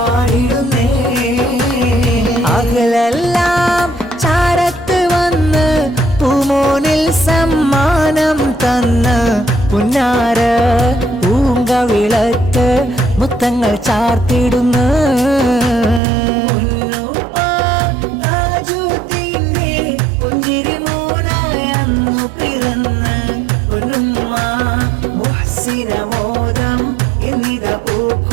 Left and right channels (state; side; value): drops out; left; at 16.0 s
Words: അകലെല്ലാം ചാരത്ത് വന്ന് പൂമോനിൽ സമ്മാനം തന്ന് പുന്നാര പൂങ്കവിളക്ക് മുത്തങ്ങൾ ചാർത്തിടുന്നു പുഞ്ചിരി മോനായി അന്നു പിറന്ന് പൊന്നുമ്മ മുഹ്സിനമോദം എന്നിത